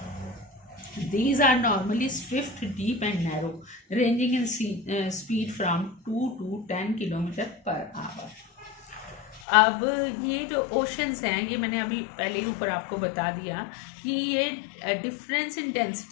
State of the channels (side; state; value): right; drops out; at 9.4 s